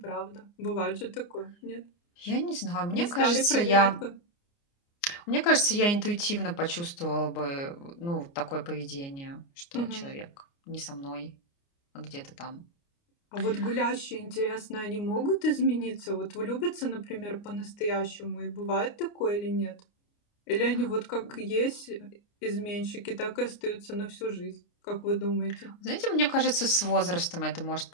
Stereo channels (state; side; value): late; right; 29 ms